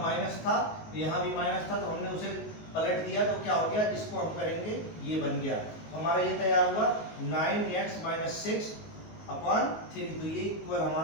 माइनस था यहाँ भी माइनस था तो हमने उसे पलट दिया तो क्या हो गया, इसको हम करेंगे ये बन गया। तो हमारा ये तैयार हुआ 9x - 6/3, तो ये इक्वल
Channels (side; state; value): right; late; 19 ms